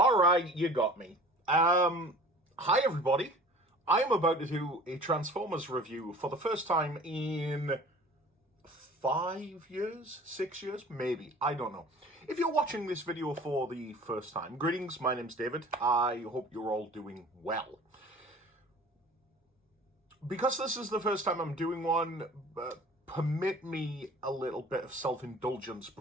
right, you got me. Hi everybody. I am about to do a Transformers review for the first time in 5 years, 6 years, maybe. I don't know. If you're watching this video for the first time, greetings. My name's David. I hope you're all doing well. Because this is the first time I'm doing one, permit me a little bit of self-indulgence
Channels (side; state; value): both; normal; correlation 0.45